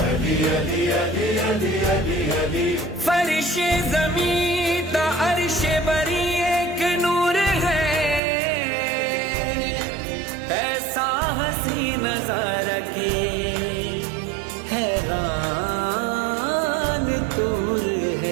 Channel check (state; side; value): drops out; left; at 8.2 s